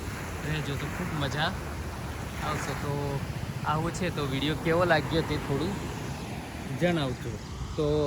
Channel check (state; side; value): identical; both; correlation 1.00